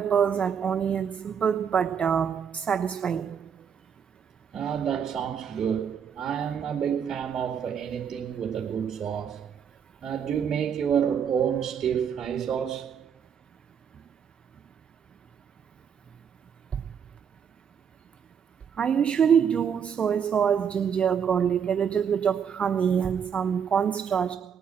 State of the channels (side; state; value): left; quieter; 7.6 dB